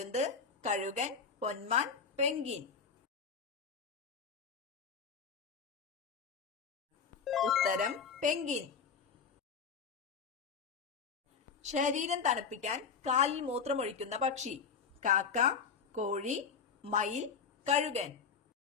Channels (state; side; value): quieter; right; 5.8 dB